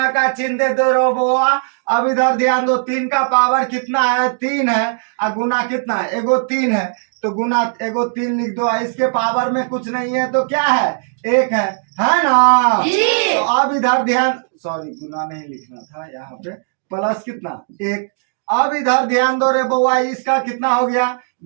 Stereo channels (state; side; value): silent; left; digital silence